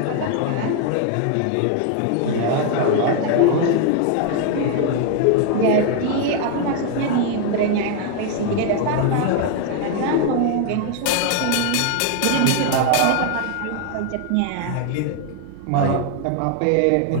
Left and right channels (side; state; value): both; different; correlation 0.00